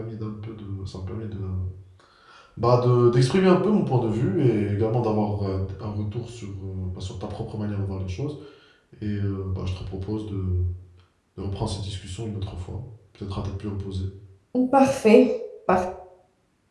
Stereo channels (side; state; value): both; identical; correlation 1.00